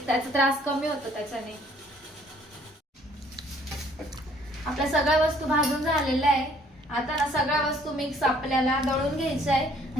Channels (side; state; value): both; normal; correlation 0.60